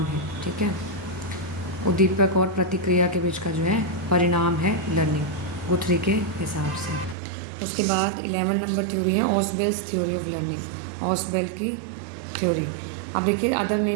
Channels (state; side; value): drops out; left; at 7.2 s